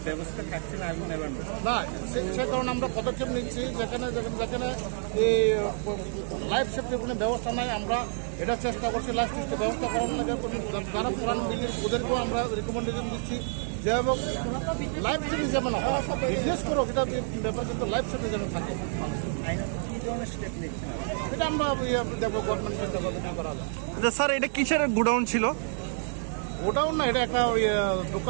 ব্যবস্থা থাকছে না আগুন নেভানোর। না, সে কারণে আমরা পদক্ষেপ নিচ্ছি। যেখানে এই লাইফ সেফটির কোনো ব্যবস্থা নাই, আমরা এটা চেষ্টা করছি লাইফ সেফটির ব্যবস্থা করার লাগে। যারা পুরান বিল্ডিং ওদেরকেও আমরা রিকমেন্ডেশন দিচ্ছি যে লাইফ সেফটি যেমন বিজনেস করো, এটা ব্যাপার, কিন্তু লাইফ সেফটি যেন থাকে। এটা আমরা দেখবো গভর্নমেন্টের করা যায়। আচ্ছা স্যার, এটা কিসের গোডাউন ছিল? গোডাউন না, এটা একটা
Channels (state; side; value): silent; left; 57 dB below the other